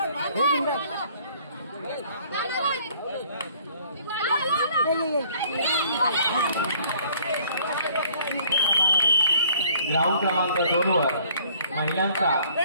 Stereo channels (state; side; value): inverted; both; correlation -0.58